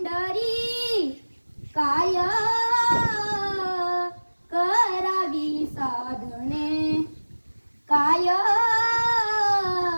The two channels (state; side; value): inverted; both; correlation -1.00